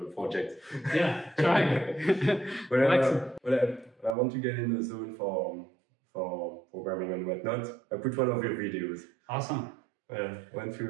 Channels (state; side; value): drops out; left; at 4.2 s